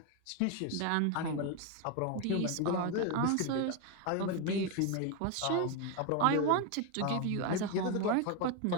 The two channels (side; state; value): both; different; correlation 0.02